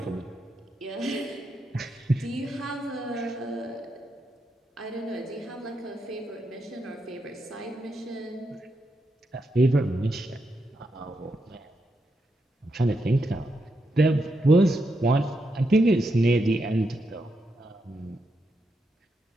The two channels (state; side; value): normal; both; correlation 0.83